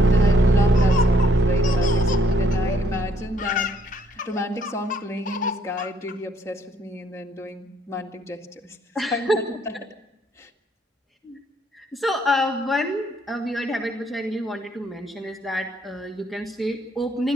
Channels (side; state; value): both; normal; correlation 0.68